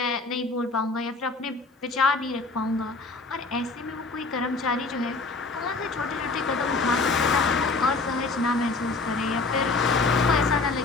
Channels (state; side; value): quieter; right; 3.8 dB